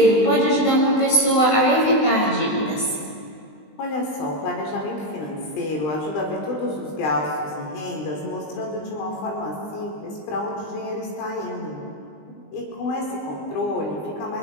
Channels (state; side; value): late; right; 20 ms